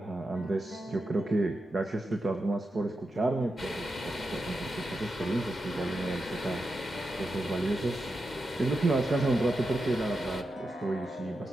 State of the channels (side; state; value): both; normal; correlation 0.88